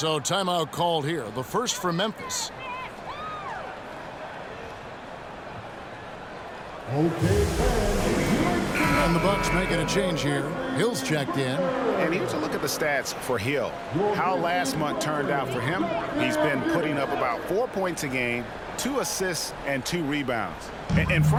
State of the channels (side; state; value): both; identical; correlation 1.00